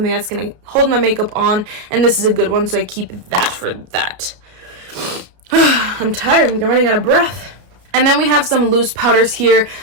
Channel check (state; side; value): late; left; 33 ms